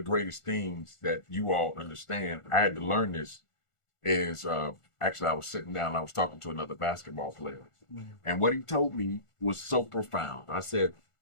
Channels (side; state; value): right; late; 1.4 ms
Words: greatest things that you all understand, I had to learn this, is actually I was sitting down and I was talking to another basketball player, and what he told me was so profound. I said,